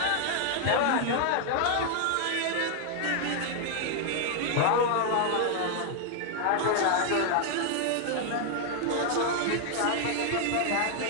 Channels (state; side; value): different; both; correlation 0.00